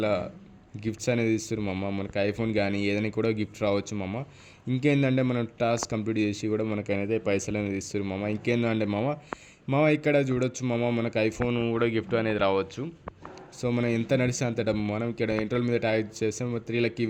గిఫ్ట్స్ అనేది ఇస్తారు మమ్మ. మనకి ఐఫోన్ కానీ ఏదైనా కూడా గిఫ్ట్ రావచ్చు మమ్మ. ఇంకేంటంటే మనం టాస్క్ కంప్లీట్ చేసి కూడా మనకు అనేది పైసలు అనేది ఇస్తారు మమ్మ. ఇంకేంటంటే మామ ఇక్కడ చూడొచ్చు మామ, మనకు ఐఫోన్ కూడా గిఫ్ట్ అనేది రావచ్చు. సో మనం ఎంత నడిస్తే అంత డబ్బు. మనం ఇక్కడ ఇంటర్వల్ మీద ట్యాగ్ చేస్తే 3 లక్కీ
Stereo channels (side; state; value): both; identical; correlation 1.00